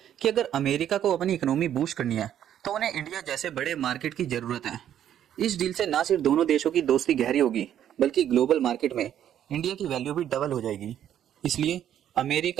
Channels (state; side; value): quieter; left; 10.5 dB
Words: कि अगर अमेरिका को अपनी इकोनॉमी बूस्ट करनी है तो उन्हें इंडिया जैसे बड़े मार्केट की जरूरत है। इस डील से न सिर्फ दोनों देशों की दोस्ती गहरी होगी बल्कि ग्लोबल मार्केट में इंडिया की वैल्यू भी डबल हो जाएगी। इसलिए